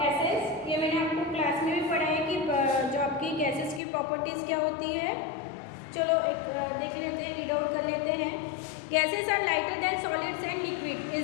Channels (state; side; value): drops out; right; at 3.8 s